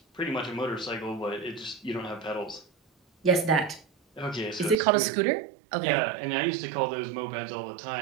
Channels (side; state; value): left; drops out; at 4.8 s